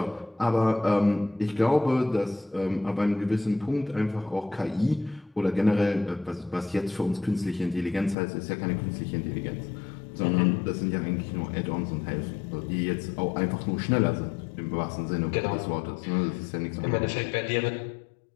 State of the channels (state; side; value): drops out; right; at 8.2 s